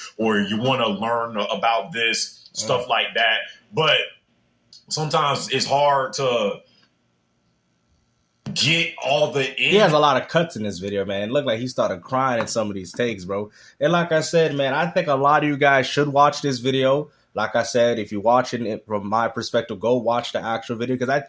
or you want to learn about this, stuff like that. But sometimes it's hard to get all the He has a lot of cuts in this video, man. It looked like he started crying in some of these takes, bro. And like I said, man, I think a lot of you guys should watch this video. Like I said, if you're watching it from my perspective, go watch the actual video, because I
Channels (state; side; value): identical; both; correlation 1.00